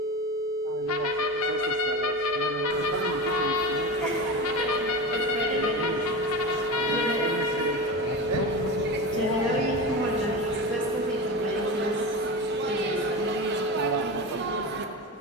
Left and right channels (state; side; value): normal; both; correlation 0.25